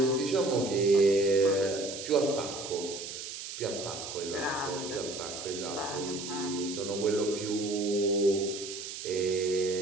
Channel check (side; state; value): right; noise; hiss, 9 dB below the sound